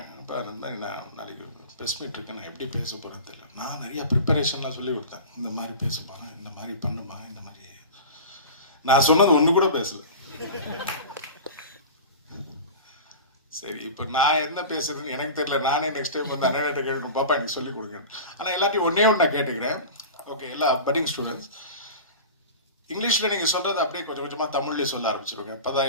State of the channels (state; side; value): inverted; both; correlation -0.33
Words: அப்போ இருந்தால் நான் நாளைக்கு ப்ரெஸ் மீட் இருக்கேன், நான் எப்படி பேச போகிறேன்னு தெரியல. நான் நிறையா ப்ரிப்பரேஷன்லாம் சொல்லி கொடுத்தேன். இந்த மாதிரி பேச போகிறேன், இந்த மாதிரி பண்ணுமா, இந்த மாதிரி நான் சொன்னது ஒன்று கூட பேசல. சரி, இப்போ நான் என்ன பேசுறதுன்னு எனக்கு தெரியல. நானே நெக்ஸ்ட் டைம் வந்து அண்ணன் கேட்கணும், பாப்பா எனக்கு சொல்லிக் கொடுங்க. ஆனால் எல்லாத்தையும் ஒன்றே ஒன்று நான் கேட்டுக்கிறேன். ஓகே, எல்லா பட்டிங் ஸ்டூடெண்ட்ஸ், இங்கிலீஷில் நீங்கள் சொல்கிறது அப்படியே கொஞ்சம் கொஞ்சமாக தமிழ்லேயே சொல்ல ஆரம்பிச்சிருங்க. அப்போ தான்